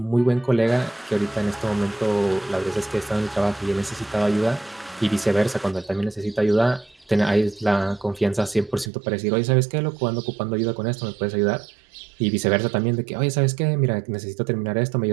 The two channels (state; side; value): drops out; left; at 8.9 s